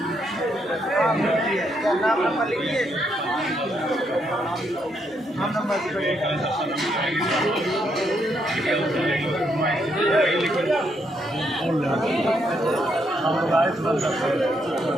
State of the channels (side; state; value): both; normal; correlation 0.76